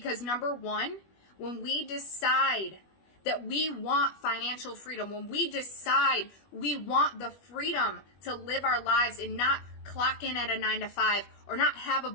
number one, when we decide that we want financial freedom, when we decide we want the freedom to live our lives and not clock in at a 9 to 5 or not have a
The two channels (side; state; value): right; late; 21 ms